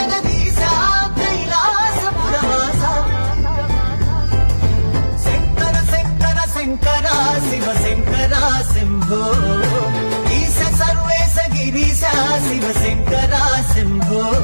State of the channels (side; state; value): both; inverted; correlation -1.00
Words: కైలాసపురవాస శంకర శంకర శంకర శివ శంకర శంభో ఈశ సర్వేశ గిరీశ శివ శంకర శంభో